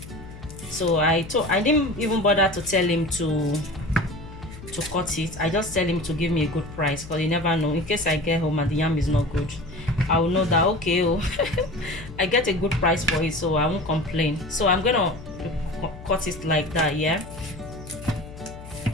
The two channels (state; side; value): noise; left; hum, 15 dB below the sound